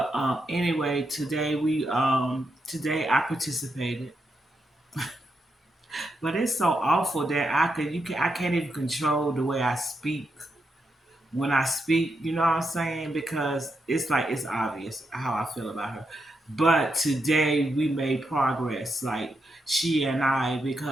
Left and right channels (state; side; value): normal; both; correlation 0.83